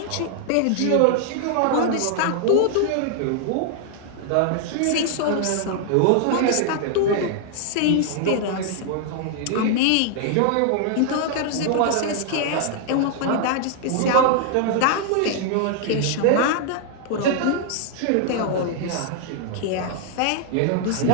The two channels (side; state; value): both; different; correlation 0.00